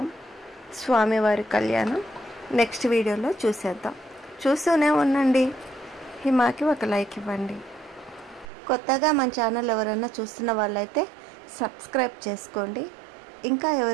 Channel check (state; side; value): drops out; left; at 8.5 s